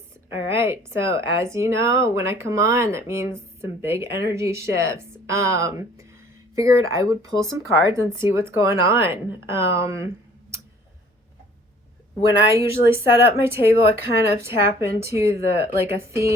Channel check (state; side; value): normal; both; correlation 0.54